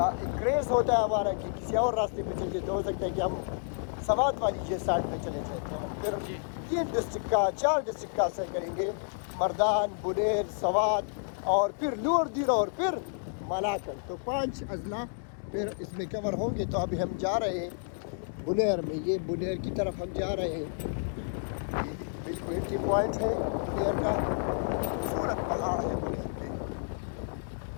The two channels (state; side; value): silent; right; digital silence